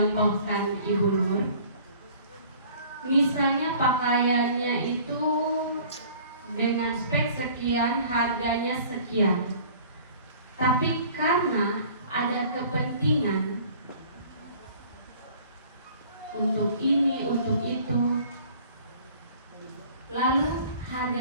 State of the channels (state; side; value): inverted; both; correlation -0.50